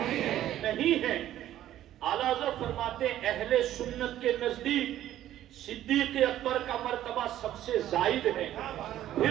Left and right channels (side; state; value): left; quieter; 12.6 dB